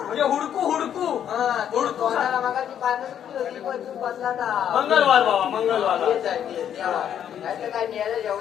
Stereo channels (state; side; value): quieter; right; 9.5 dB